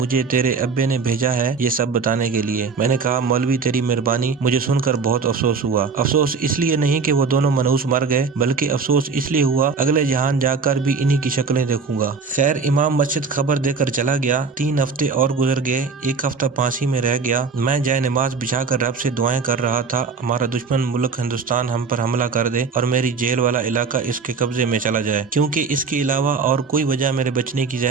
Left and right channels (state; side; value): quieter; left; 5.0 dB